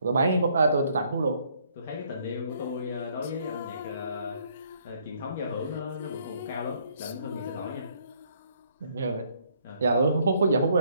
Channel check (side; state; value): both; inverted; correlation -0.67